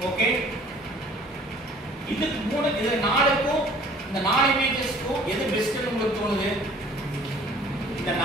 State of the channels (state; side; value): normal; both; correlation 0.52